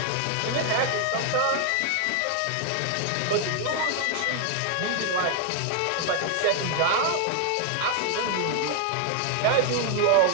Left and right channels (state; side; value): different; both; correlation 0.00